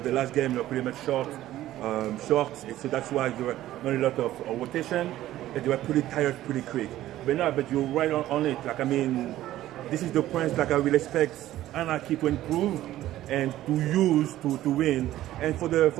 the last game they were pretty much short, so that's why there were not a lot of rotation, and they were pretty tired pretty quick. But you're right on it. Like, I mean, this is the points like I will expect Anarchy to improve and to use to win. And for the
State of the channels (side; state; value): left; quieter; 14.2 dB